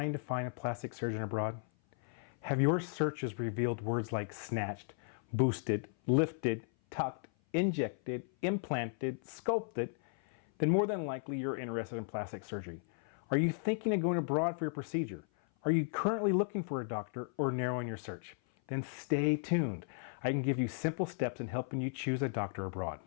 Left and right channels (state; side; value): silent; right; 54 dB below the other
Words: to find a plastic surgeon abroad? Have your searches revealed words like snatched, boosted, lifted, tucked, injected, implanted, sculpted? Then more than likely you're interested in plastic surgery. Are you thinking of going abroad for your procedure? Are you currently looking for a doctor or narrowing your search? Then stay tuned. I can give you simple steps in helping you choose a doctor abroad.